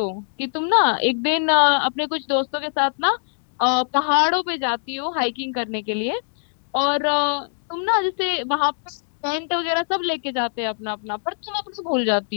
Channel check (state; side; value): silent; right; digital silence